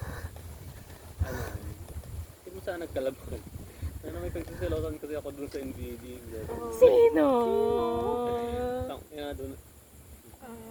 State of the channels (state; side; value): identical; both; correlation 1.00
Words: hindi mo sana nagkalabag. May pagsiselosan kasi ako doon sa NBD. Sino? Doon.